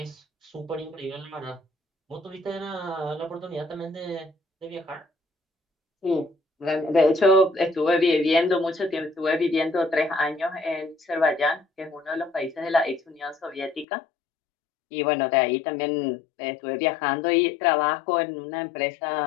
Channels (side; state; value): right; drops out; at 13.9 s